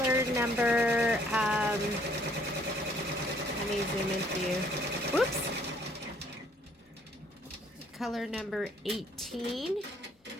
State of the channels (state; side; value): normal; both; correlation 0.62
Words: number, let me zoom in for you. Whoops. Color number 18.